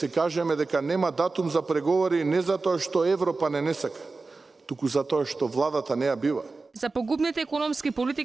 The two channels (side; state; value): left; quieter; 3.8 dB